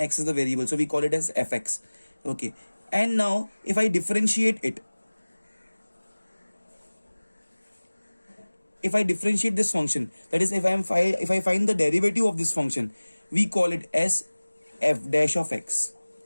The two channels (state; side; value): inverted; both; correlation -1.00